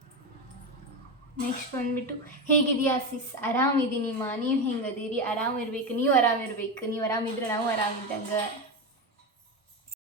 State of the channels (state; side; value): normal; both; correlation 0.17